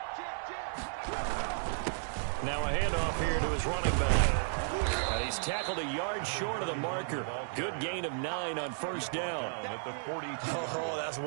Now a handoff here to his running back. And he's tackled a yard short of the marker. Good gain of 9 on first down. Oh, that's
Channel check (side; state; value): left; silent; digital silence